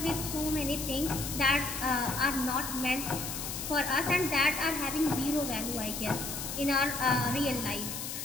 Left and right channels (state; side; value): noise; left; hiss, 5 dB below the sound